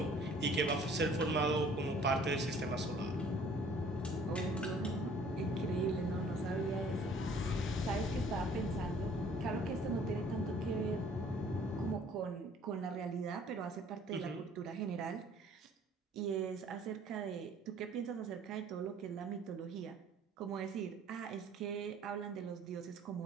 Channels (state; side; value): normal; both; correlation 0.55